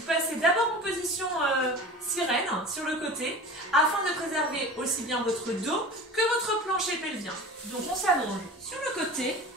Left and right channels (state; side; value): normal; both; correlation 0.36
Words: passez d'abord en position sirène sur le côté afin de préserver aussi bien votre dos que votre plancher pelvien. Donc on s'allonge sur le côté,